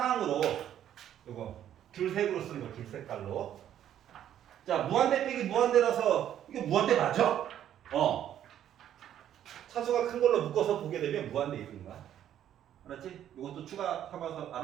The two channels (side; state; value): left; quieter; 10.7 dB